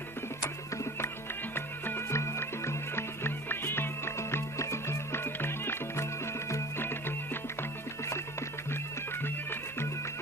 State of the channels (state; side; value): noise; right; hum, 21 dB below the sound